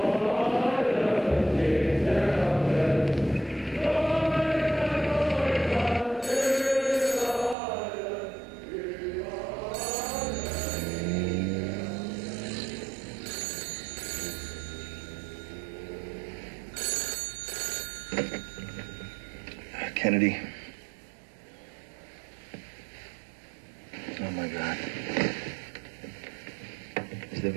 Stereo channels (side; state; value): left; drops out; at 7.6 s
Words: Kennedy. Oh, my God. Is there